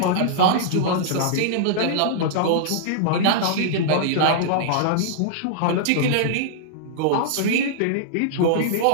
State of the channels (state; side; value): different; both; correlation -0.02